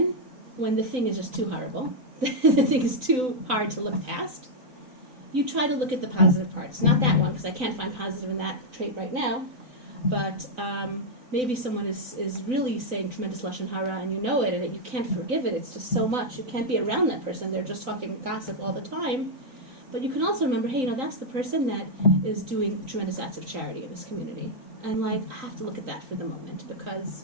when the thing is just too horrible, the thing is too hard to look past, you try to look at the positive parts. Not that one, because I can't find positive in that trait right now, but maybe someone is really saying tremendous lashon hara and you know it, and you can't forgive it. It's just so much. You can't be around that person. They're just talking gossip all the time. But you can also remember, hey, that's the person that is doing tremendous acts of charity in this community. And, I have to look at that for the moment because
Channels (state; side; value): late; left; 3.9 ms